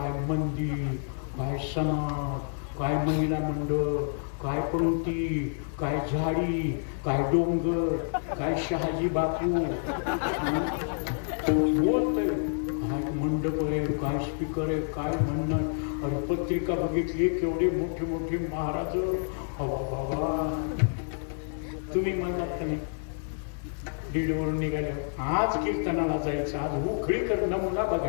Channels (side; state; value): right; silent; 59 dB below the other